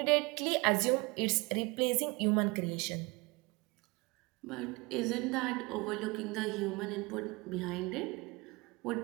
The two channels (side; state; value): left; quieter; 25.8 dB